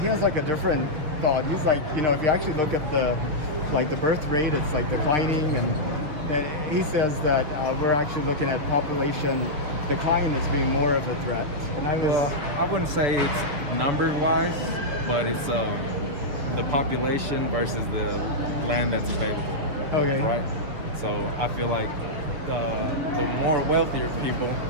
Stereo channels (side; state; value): left; late; 6.6 ms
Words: has like a different thought. He's like, if you actually look at the birth rate, it's like declining, and he says that we're actually looking at population decline as being more of a threat. And I wouldn't say it's number-wise, but it's the population versus the land that's available. Okay. Right? So I feel like the more wealthier people